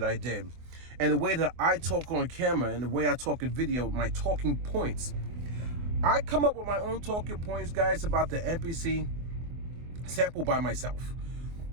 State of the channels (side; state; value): left; late; 24 ms